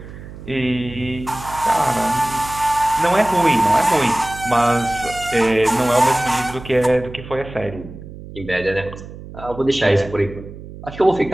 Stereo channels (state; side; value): noise; right; hum, 14 dB below the sound